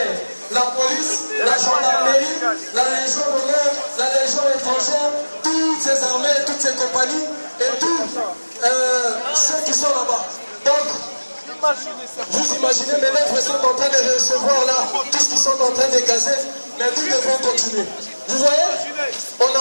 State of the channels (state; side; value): inverted; both; correlation -1.00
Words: La police, la gendarmerie, la Légion d'honneur, la Légion étrangère, toutes ces armées, toutes ces compagnies et tous ceux qui sont là-bas. Donc, vous imaginez, mes lèvres sont en train de recevoir là tout ce qu'ils sont en train de gazer, mais nous devons continuer. Vous voyez, on n'a